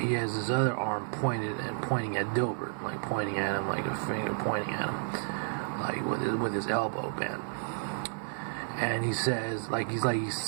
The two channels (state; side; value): silent; left; digital silence